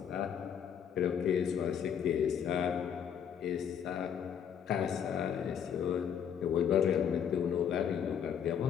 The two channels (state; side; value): quieter; right; 8.2 dB